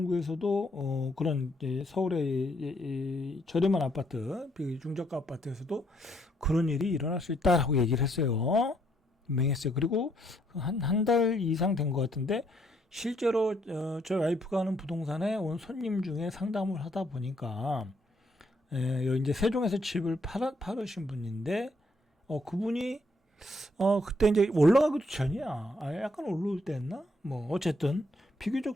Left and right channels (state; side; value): normal; both; correlation 0.71